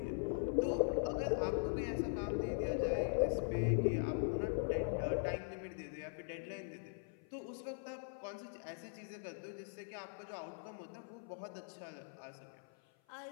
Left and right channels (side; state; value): right; silent; 50 dB below the other